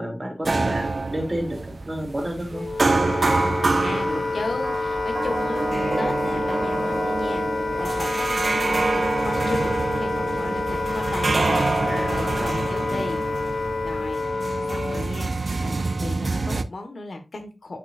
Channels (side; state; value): both; normal; correlation 0.94